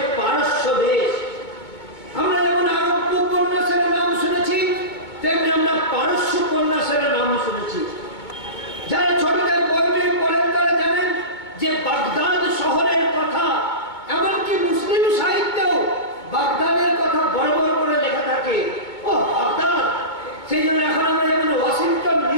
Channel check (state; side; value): late; right; 2.2 ms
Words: বাগদাদের কথা বড় বড় করে লেখা থাকে। ও বাগদাদ, সেই জন্য এখন আমরা যেমন ওয়াশিংটন,